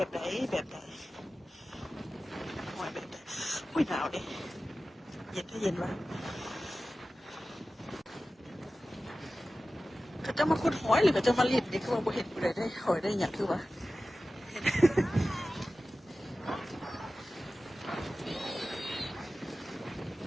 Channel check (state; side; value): normal; both; correlation 0.95